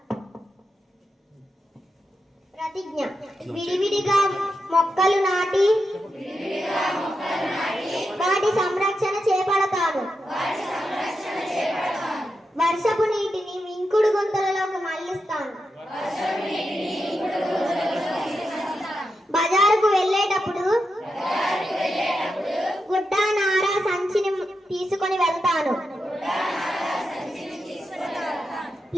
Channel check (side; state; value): both; normal; correlation 0.87